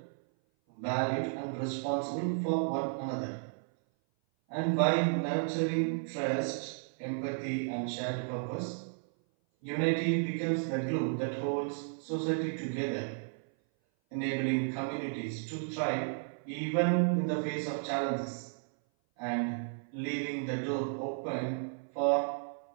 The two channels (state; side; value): silent; left; 55 dB below the other